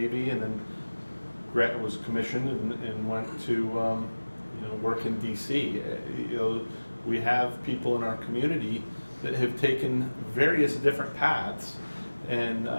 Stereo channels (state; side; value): inverted; both; correlation -1.00